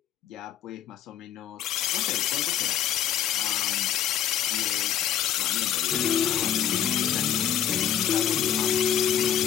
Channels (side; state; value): right; quieter; 10.0 dB